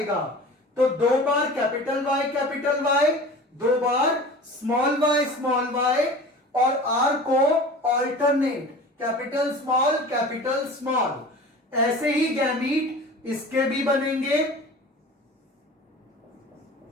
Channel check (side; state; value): both; normal; correlation 0.39